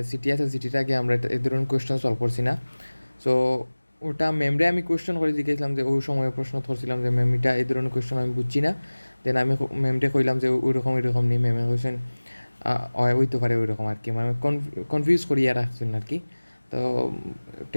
সিটি আছে সিটিটাকে আমরা এই ধরনের কোয়েশ্চেন সলভ করছি না। সো ওটা ম্যামরে আমি কোয়েশ্চেন করে জিজ্ঞেসলাম যে ওই সময় প্রশ্ন করছিলাম যে ম্যাম এটা এই ধরনের কোয়েশ্চেন আমি বুঝছি না। দেন আমি ম্যামরে কইলাম যে ওইরকম নেই। ম্যামে কইছেন হইতে পারে ওই রকম আর কি, মানে কনফিউজ করিয়া রাখছেন আর কি। তো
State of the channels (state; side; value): inverted; both; correlation -1.00